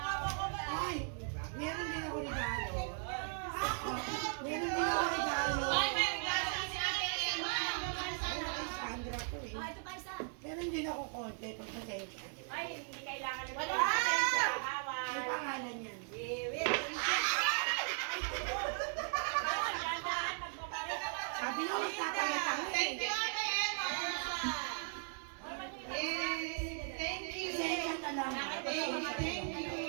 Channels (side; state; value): left; silent; 53 dB below the other